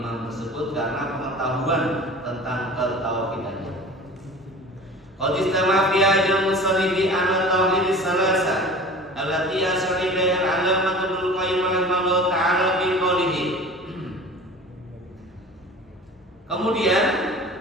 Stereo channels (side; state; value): both; normal; correlation 0.39